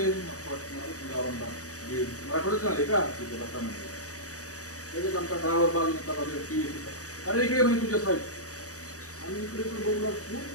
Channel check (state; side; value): late; right; 0.66 ms